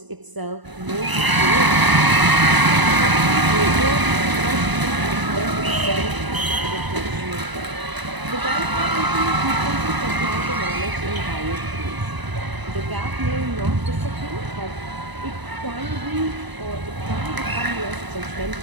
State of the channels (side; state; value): left; late; 1.0 ms